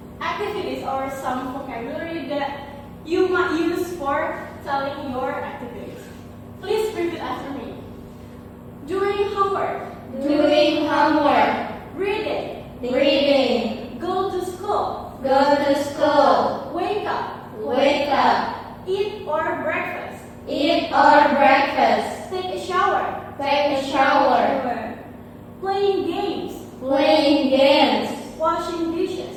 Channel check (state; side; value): identical; both; correlation 1.00